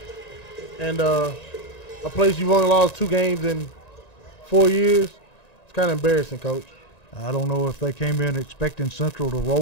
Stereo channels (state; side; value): late; right; 1.9 ms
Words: and a place you've only lost 2 games in 4 years, it's kind of embarrassing, Coach. I don't know if they came in expecting Central to